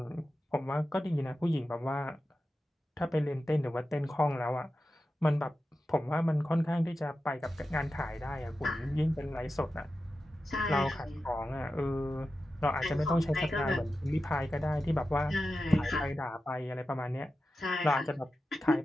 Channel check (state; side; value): normal; both; correlation 0.92